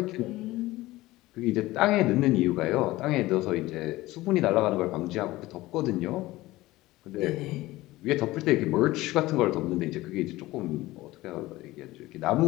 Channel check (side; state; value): right; quieter; 18.2 dB